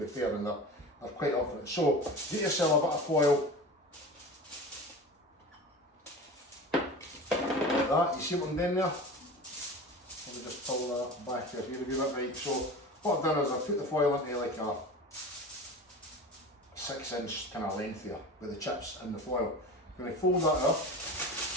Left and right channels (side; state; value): both; normal; correlation 0.33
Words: fair, and they're quite up for it. So get yourself a bit of foil. Like that. You see what I'm doing there? Let me just pull that back here a wee bit, right. So what I've done is I've put the foil into like a 6-inch kind of length here with the chips in the foil. I'm going to fold that up,